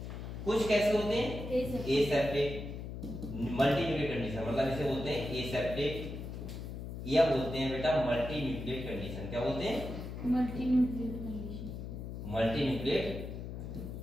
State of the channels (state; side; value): noise; left; hum, 7 dB below the sound